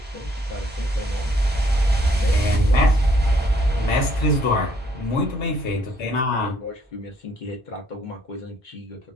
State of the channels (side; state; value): both; normal; correlation 0.66